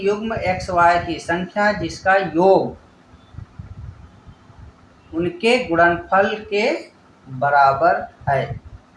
युग्म एक्स वाई की संख्या जिसका योग उनके गुणनफल के बराबर है,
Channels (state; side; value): identical; both; correlation 1.00